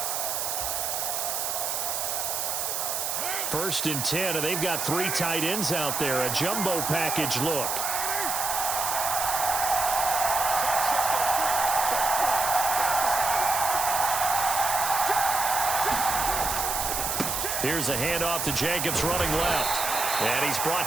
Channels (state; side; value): noise; right; hiss, 1 dB below the sound